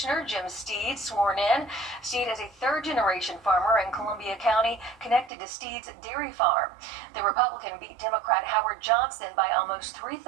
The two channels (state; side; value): drops out; left; at 5.3 s